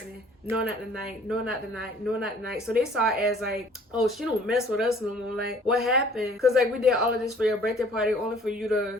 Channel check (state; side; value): normal; both; correlation 0.54